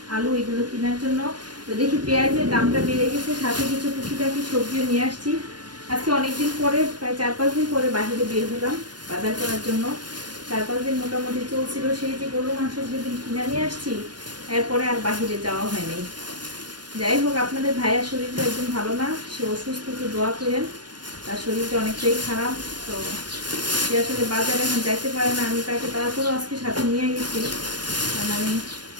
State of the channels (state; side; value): late; left; 0.70 ms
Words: আলু এগুলো কেনার জন্য। তো দেখি পেঁয়াজের দামটা বেড়ে গেছে, সাথে কিছু টুকিটাকি সবজিও নিয়ে আসছি। আজকে অনেকদিন পরে, প্রায় 4-5 দিন পরে বাহিরে বের হলাম বাজার করার জন্য। 4-5 দিন মোটামুটি চলছিল, সেই যে গরু মাংস যেদিন কিনে নিয়ে আসছি, এরপরে আর বাহিরে যাওয়া হয়নি। যাই হোক, আপনাদের ভাইয়ার শরীরটা একদম ভালো না, সে অসুস্থ, একটু দোয়া করেন। তার শরীরটা অনেকটাই খারাপ, তো সে আসলে বাজারে এখন যাইতে পারে না। আমি তাকে তারপরেও আজকে সাথে নিয়ে গেছি, কারণ আমি